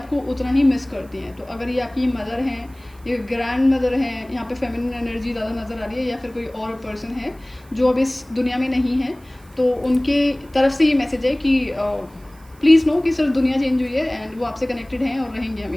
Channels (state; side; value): noise; right; hiss, 29 dB below the sound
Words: उतना ही मिस करती हैं। तो अगर ये आपकी मदर हैं, ये ग्रैंड मदर हैं, यहाँ पे फेमिनिन एनर्जी ज़्यादा नज़र आ रही है, या फिर कोई और पर्सन है जो अब इस दुनिया में नहीं है, तो उनके तरफ से ये मैसेज है कि प्लीज़ नो कि सिर्फ दुनिया चेंज हुई है एंड वो आपसे कनेक्टेड हैं और रहेंगे